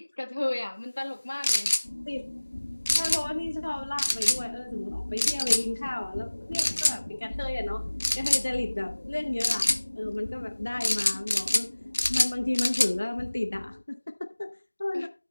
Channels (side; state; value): both; inverted; correlation -1.00